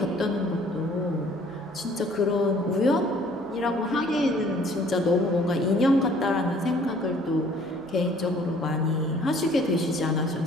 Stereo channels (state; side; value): normal; both; correlation 0.56